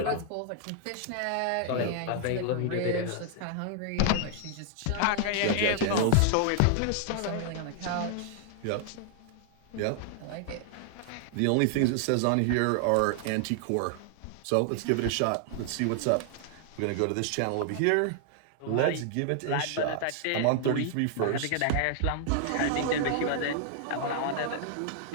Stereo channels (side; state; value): both; different; correlation 0.00